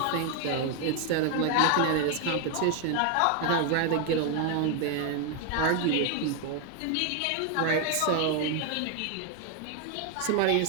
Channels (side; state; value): both; different; correlation 0.00